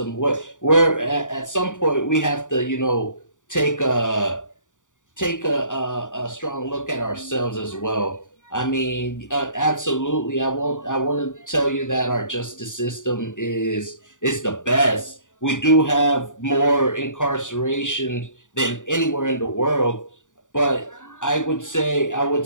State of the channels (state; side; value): late; right; 0.86 ms